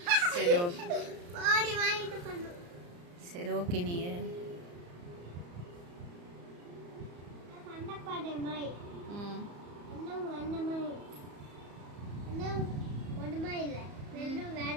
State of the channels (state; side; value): late; left; 34 ms